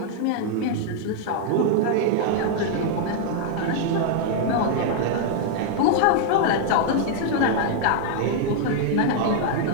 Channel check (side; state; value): both; different; correlation 0.00